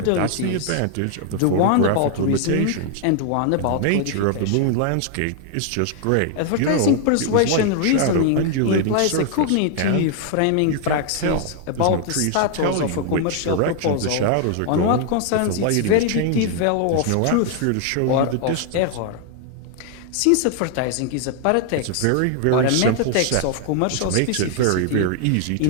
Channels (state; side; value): different; both; correlation 0.00